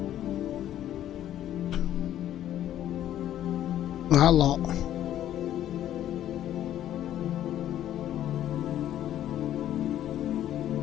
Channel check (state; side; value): quieter; right; 11.8 dB